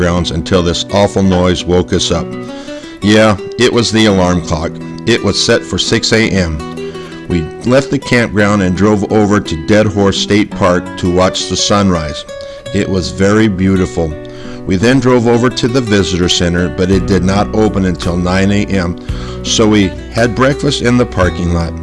until this awful noise woke us up. Yeah, it was the alarm clock. It was set for 6 a.m. We left the campground and drove over to Dead Horse State Park to watch the sunrise. It was very beautiful. We then drove over to the visitor center, but it did not open until 9 a.m., so we had breakfast in the parking lot.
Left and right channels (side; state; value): both; identical; correlation 1.00